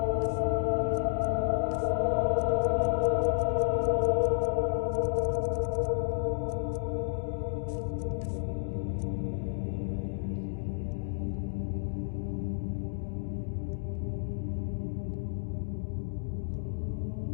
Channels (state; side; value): silent; right; digital silence